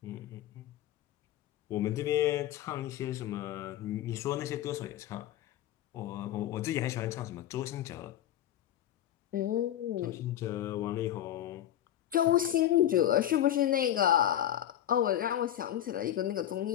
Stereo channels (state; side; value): quieter; right; 11.8 dB